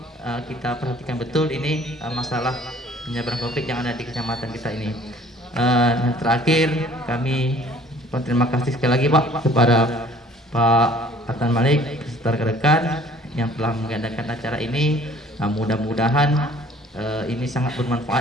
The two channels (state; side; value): normal; both; correlation 0.54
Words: kita perhatikan betul ini masalah penyebaran COVID yang ada di kecamatan kita ini. Dan terakhir kami terima kasih sekali lagi Pak kepada Pak Atan Malik beserta rekan-rekan yang telah mengadakan acara ini. Mudah-mudahan ini sangat